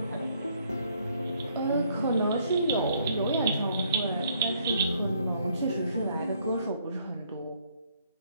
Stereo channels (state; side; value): inverted; both; correlation -0.67